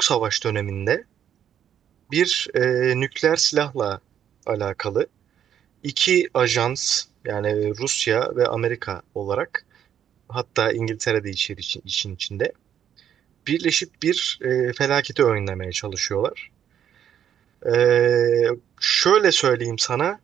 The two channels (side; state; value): left; quieter; 9.5 dB